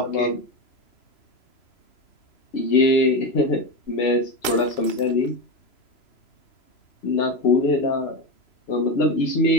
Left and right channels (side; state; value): right; late; 2.7 ms